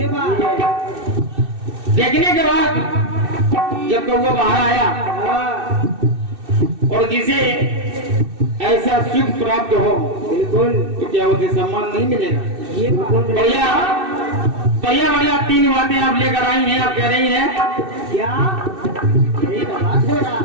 बात है। देखने के बाद जब कौवा बाहर आया, और जिसे ऐसा सुख प्राप्त हो, बिल्कुल, तो क्या उसे सम्मान नहीं मिलेगा? ये बढ़िया बढ़िया बढ़िया 3 बातें आप लेकर आई हैं। आप कह रही हैं क्या?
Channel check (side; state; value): left; late; 2.6 ms